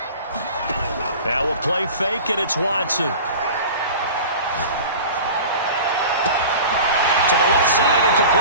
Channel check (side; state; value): both; inverted; correlation -0.37